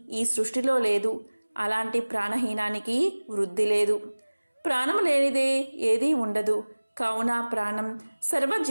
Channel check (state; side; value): inverted; both; correlation -1.00